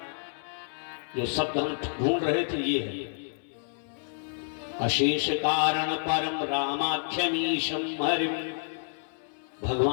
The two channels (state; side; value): silent; right; 58 dB below the other